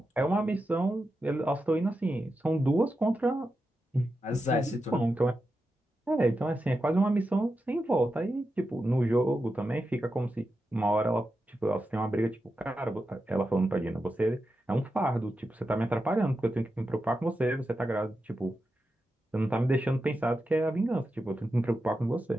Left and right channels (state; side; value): normal; both; correlation 0.89